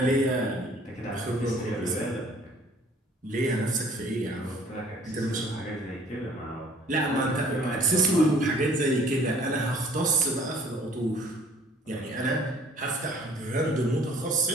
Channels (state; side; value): normal; both; correlation 0.55